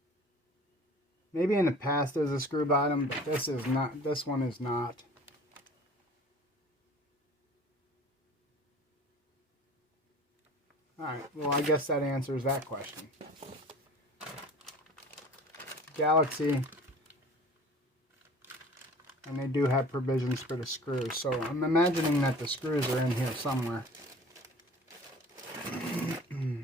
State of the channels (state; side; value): normal; both; correlation 0.45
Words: Maybe in the past there's a screw bottom, but this is not. This one is not. Alright, well I guess that answers that question. Galaxy, and they do have provisions for the screws, so I'm imagining that the screws are in here somewhere.